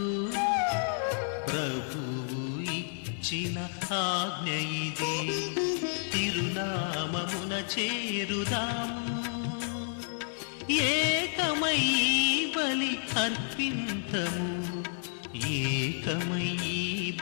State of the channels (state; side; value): silent; right; digital silence